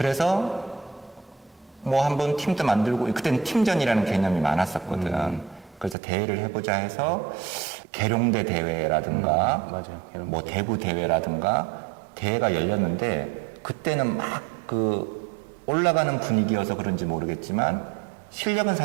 뭐 한번 팀도 만들고 그때는 팀전이라는 개념이 많았었거든. 그래서 대회를 해보자 해서 계룡대 대회라든가 맞아요. 뭐 대구 대회라든가 대회가 열렸는데 그때는 막 올라가는 분위기여서 그런지 모르겠지만 실력은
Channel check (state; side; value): drops out; left; at 6.0 s